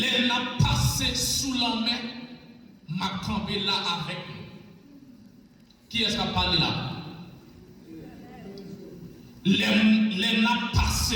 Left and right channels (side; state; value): both; identical; correlation 1.00